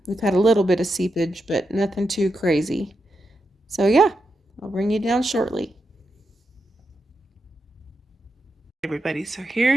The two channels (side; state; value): both; normal; correlation 0.86